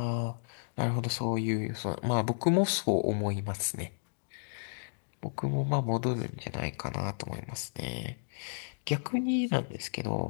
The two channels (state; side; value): silent; right; digital silence